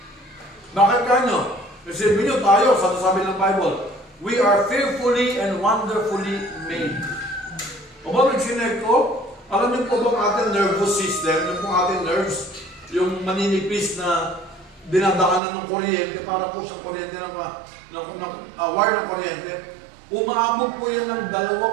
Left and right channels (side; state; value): left; drops out; at 15.4 s